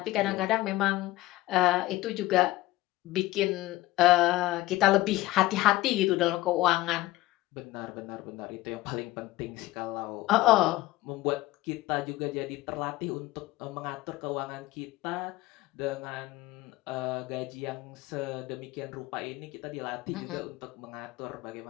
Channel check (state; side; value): quieter; right; 17.5 dB